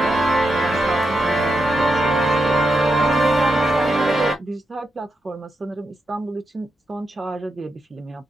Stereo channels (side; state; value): both; normal; correlation 0.85